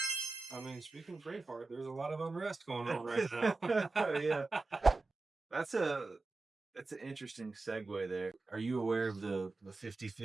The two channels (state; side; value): quieter; left; 3.5 dB